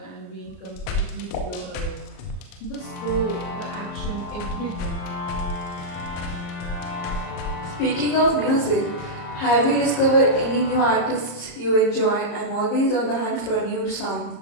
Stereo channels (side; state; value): right; late; 34 ms